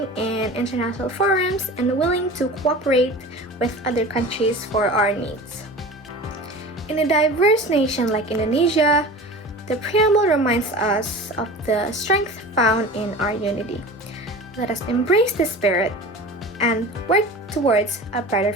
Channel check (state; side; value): normal; both; correlation 0.36